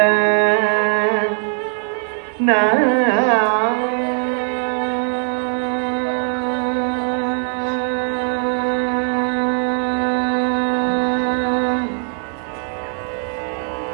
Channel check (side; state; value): left; silent; 55 dB below the other